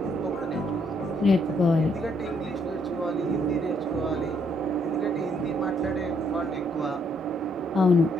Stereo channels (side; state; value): both; normal; correlation 0.71